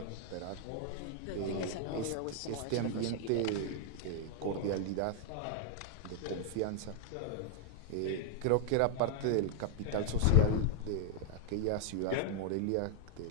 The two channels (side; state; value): both; different; correlation -0.01